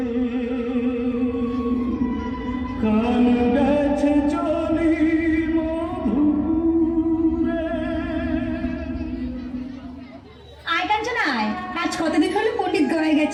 কান গেছে চলি মধুপুরে। আয় কাঞ্চনা আয়, আজ কতদিন হলো পণ্ডিত গয়ে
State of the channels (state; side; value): identical; both; correlation 1.00